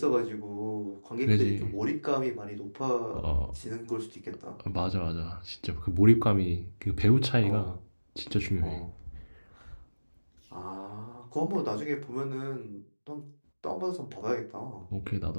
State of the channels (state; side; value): inverted; both; correlation -1.00